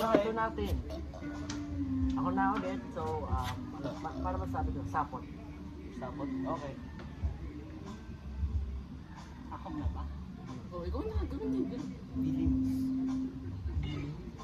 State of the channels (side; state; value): both; identical; correlation 1.00